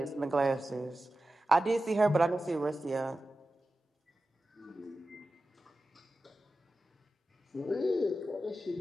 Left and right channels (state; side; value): normal; both; correlation 0.94